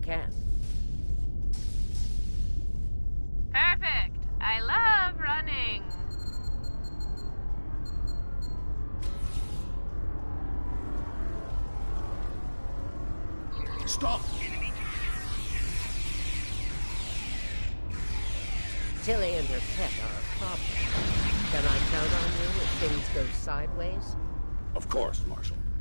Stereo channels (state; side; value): inverted; both; correlation -1.00